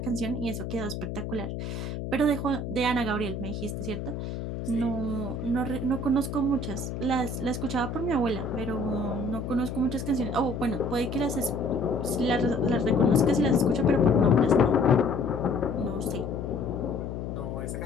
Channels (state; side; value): noise; left; hum, 5 dB below the sound